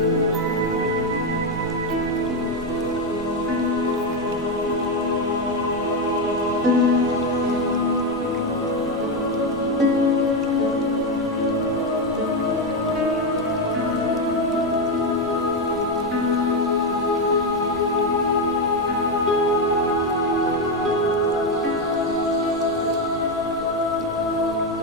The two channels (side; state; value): right; noise; rumble, 18 dB below the sound